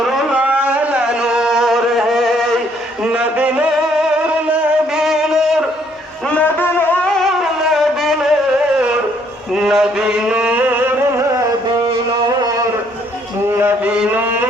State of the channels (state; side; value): normal; both; correlation 0.66